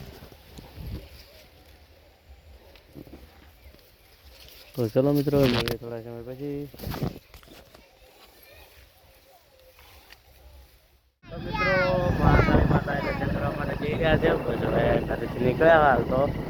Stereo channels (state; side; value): identical; both; correlation 1.00